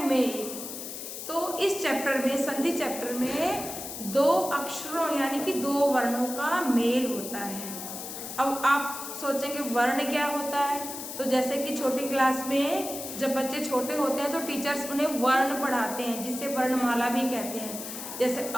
मेल। तो इस चैप्टर में संधि चैप्टर में दो अक्षरों यानी कि दो वर्णों का मेल होता है। अब आप सोचेंगे वर्ण क्या होता है, तो जैसे कि छोटी क्लास में जब बच्चे छोटे होते हैं तो टीचर्स उन्हें वर्ण पढ़ाते हैं जिसे वर्णमाला भी कहते हैं। जैसे अ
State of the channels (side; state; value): left; noise; hiss, 8 dB below the sound